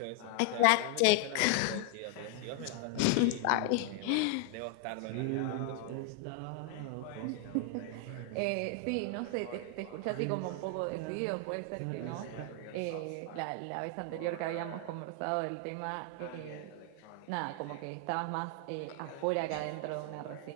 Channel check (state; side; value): different; both; correlation 0.00